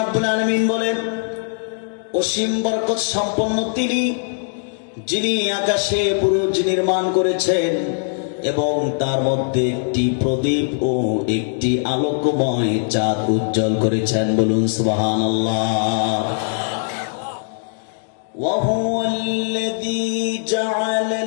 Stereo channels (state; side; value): silent; right; digital silence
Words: রাব্বুল আলামিন বলেন অসীম বরকত সম্পন্ন তিনি, যিনি আকাশে বুরুজ নির্মাণ করেছেন এবং তার মধ্যে একটি প্রদীপ ও একটি আলোকময় চাঁদ উজ্জ্বল করেছেন। বলুন সুবহানাল্লাহ। ওয়া হুয়াল্লাযী